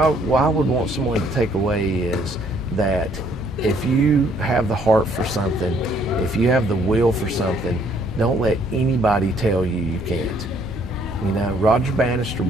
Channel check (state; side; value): normal; both; correlation 0.64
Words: would want someone to take away is that if you have the heart for something, if you have the will for something, don't let anybody tell you you can't. You know, Roger Bannister